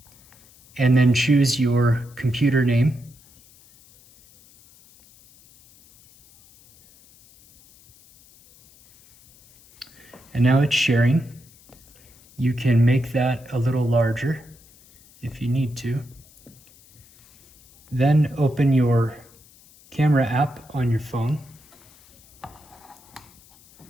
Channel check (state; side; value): noise; left; hiss, 27 dB below the sound